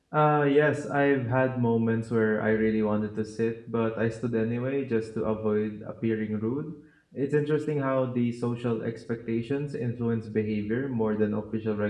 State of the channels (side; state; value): both; identical; correlation 1.00